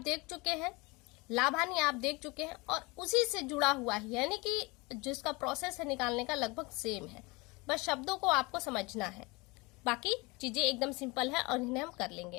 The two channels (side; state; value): right; quieter; 25.5 dB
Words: चुके हैं, लाभ हानि आप देख चुके हैं और उसी से जुड़ा हुआ है, यानी कि जिसका प्रोसेस है निकालने का लगभग सेम है, बस शब्दों को आपको समझना है। बाकी चीजें एकदम सिंपल है और इन्हें हम कर